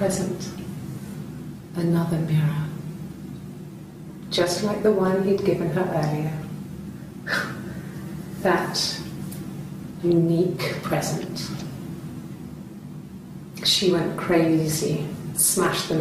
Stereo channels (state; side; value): identical; both; correlation 1.00